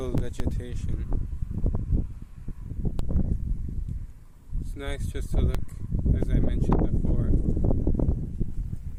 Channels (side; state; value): both; identical; correlation 1.00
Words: vegetation. It's nice just to look, as I mentioned before,